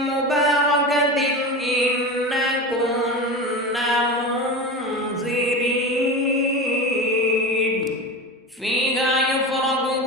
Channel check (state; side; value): normal; both; correlation 0.26